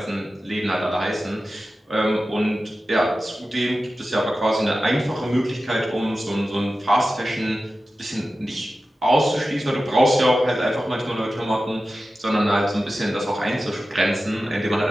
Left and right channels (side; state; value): both; normal; correlation 0.94